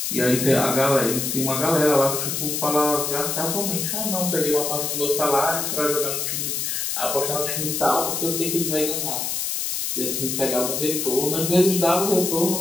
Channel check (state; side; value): noise; left; hiss, 1 dB below the sound